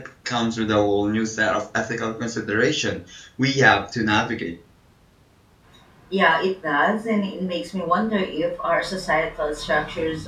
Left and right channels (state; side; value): identical; both; correlation 1.00